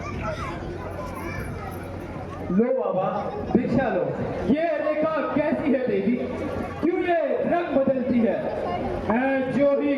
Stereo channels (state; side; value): identical; both; correlation 1.00